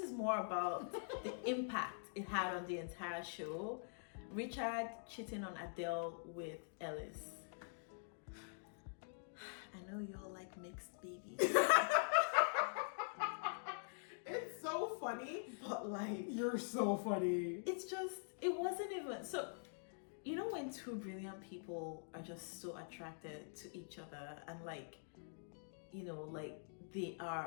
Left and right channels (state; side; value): silent; right; digital silence